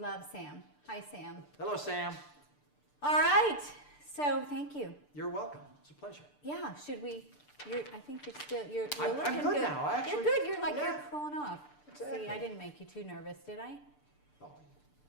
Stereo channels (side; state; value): right; late; 6.8 ms